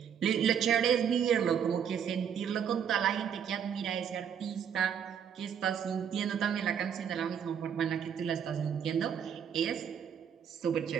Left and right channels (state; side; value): quieter; left; 8.1 dB